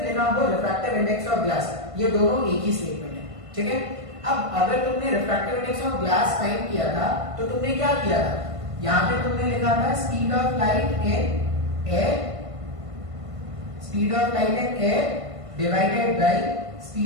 लिखा हो रिफ्रैक्टिव इंडेक्स ऑफ ग्लास, ये दोनों एक ही स्टेटमेंट है। ठीक है, अब अगर तुमने refractive index of glass find किया था तो तुमने क्या किया था, यहां पे तुमने लिखा था speed of light in air, speed of light in air divided by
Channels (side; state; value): left; late; 1.5 ms